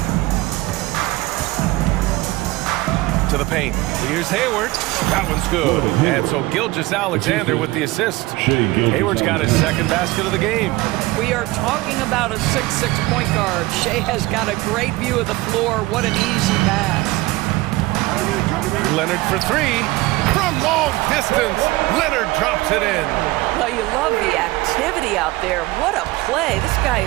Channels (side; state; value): left; quieter; 20.0 dB